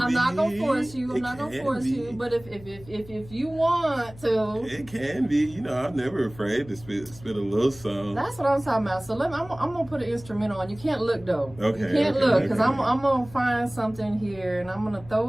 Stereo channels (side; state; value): left; noise; hum, 19 dB below the sound